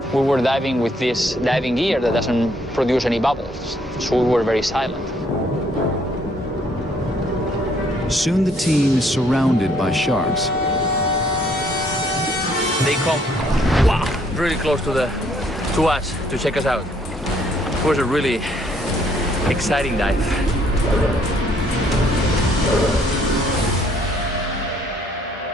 We were diving with this diving gear that doesn't produce any bubbles, so we were very silent. Soon the team is surrounded by sharks. They come, wow, really close to us to check us out. It was a really exciting dive.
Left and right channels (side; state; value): both; normal; correlation 0.66